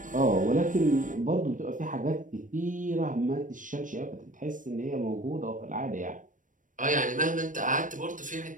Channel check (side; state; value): left; late; 0.38 ms